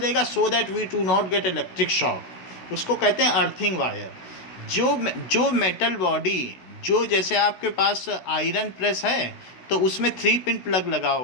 so that we do not get electric shock. उसको कहते हैं अर्थिंग वायर। जो मेटल बॉडी, जो जैसे आपके पास आयरन प्रेस है तो उसमें 3 पिन प्लग लगा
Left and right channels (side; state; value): right; late; 16 ms